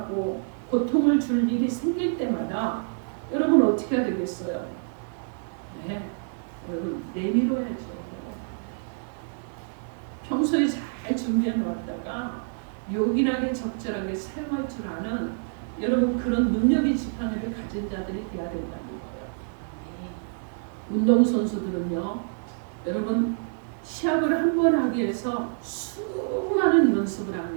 고통을 줄 일이 생길 때마다 여러분 어떻게 해야 되겠어요? 네, 여러분 내밀어야죠. 평소에 잘 준비해 놓았다가 요긴하게 적절하게 사용할 줄 아는 여러분 그런 능력의 지팡이를 가진 자들이 돼야 된다는 거예요. 운동선수들은요, 여러분 시합을 한 번 하기 위해서 수많은 연습을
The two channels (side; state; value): left; silent; 60 dB below the other